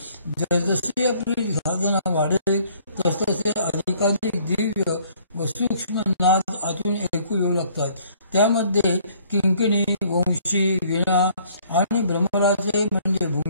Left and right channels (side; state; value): both; inverted; correlation -0.60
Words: जसजशी आपली साधना वाढेल तसतसे अधिकाधिक दिव्य व सूक्ष्म नाद आतून ऐकू येऊ लागतात. त्यामध्ये किंकिणी, वंशी, वीणा आणि भ्रमराचे म्हणजे